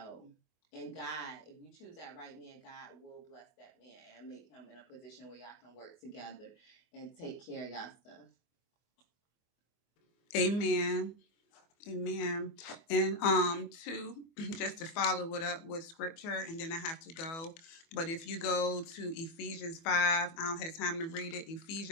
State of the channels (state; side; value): late; right; 24 ms